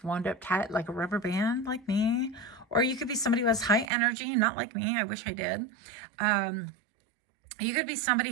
wound up tight like a rubber band, like me. Or you could be somebody who has high energy, not like me. I wish I did. You could be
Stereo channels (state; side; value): drops out; left; at 3.9 s